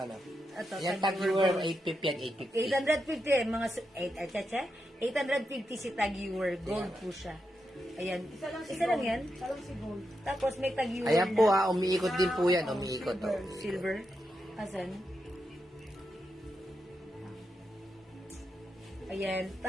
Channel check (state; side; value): normal; both; correlation 0.86